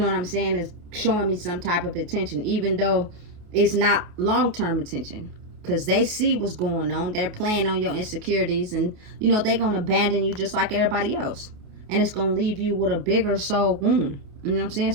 what I'm saying, is showing me some type of attention, even though it's not long-term attention, because they see what's going on. They're playing on your insecurities, and they're gonna abandon you just like everybody else, and it's gonna leave you with a bigger soul wound. You know what I'm saying?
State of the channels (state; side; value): late; left; 28 ms